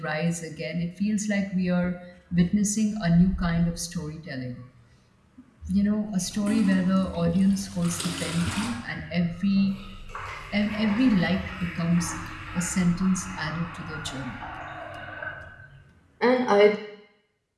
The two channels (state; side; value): identical; both; correlation 1.00